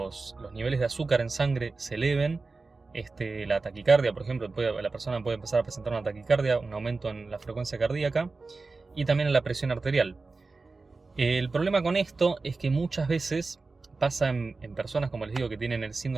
niveles de azúcar en sangre se eleven. La taquicardia, por ejemplo, la persona puede empezar a presentar una taquicardia, un aumento en la frecuencia cardíaca y también en la presión arterial. El problema con esto es que muchas veces pasa en personas, como les digo, que tienen el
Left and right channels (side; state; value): left; quieter; 3.9 dB